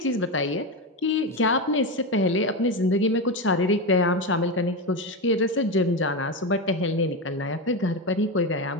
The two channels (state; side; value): normal; both; correlation 0.14